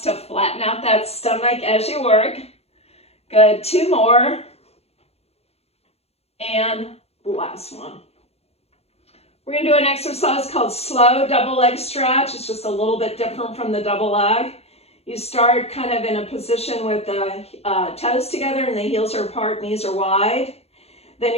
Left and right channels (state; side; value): late; right; 0.30 ms